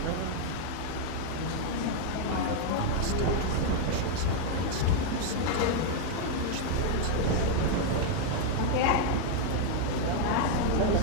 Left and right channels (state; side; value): different; both; correlation 0.00